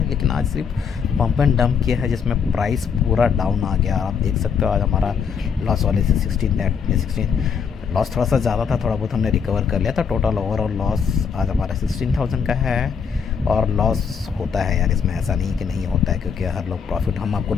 लेकिन आज सिर्फ पंप एंड डंप किया है, जिसमें प्राइस पूरा डाउन आ गया। आप देख सकते हो आज हमारा लॉस वाले से 16 लॉस थोड़ा सा ज़्यादा था, थोड़ा बहुत हमने रिकवर कर लिया था। टोटल ओवरऑल लॉस आज हमारा 16,000 का है। और लॉस होता है यार, इसमें ऐसा नहीं कि नहीं होता है, क्योंकि हर लोग प्रॉफिट हम आपको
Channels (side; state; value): right; quieter; 6.5 dB